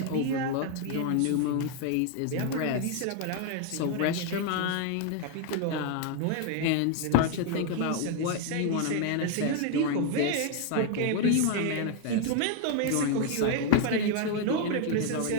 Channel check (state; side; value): different; both; correlation 0.01